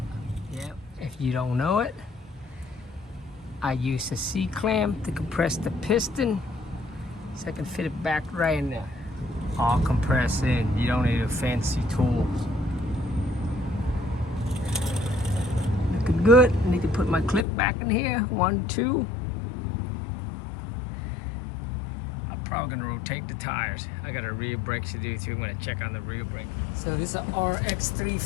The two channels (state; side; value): drops out; right; at 17.4 s